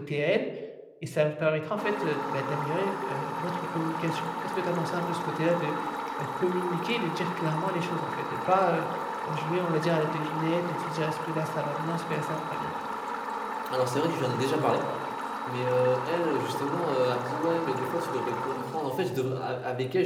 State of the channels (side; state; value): both; identical; correlation 1.00